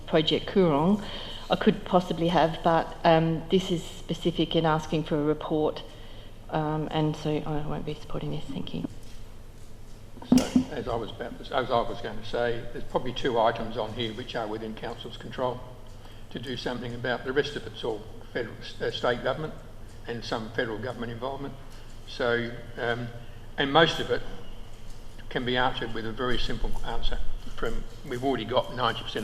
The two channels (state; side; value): identical; both; correlation 1.00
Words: Project Coorong, I could possibly have, but this is specific in asking for a report, and so I won't be supporting this. Thank you. So, as I was going to say, there's probably 2 items on here which are within Council's control to do something about. The rest of it's all federal, state government and some federal government involvement. So, and most of it can be answered with a very simple answer. We've already got 90%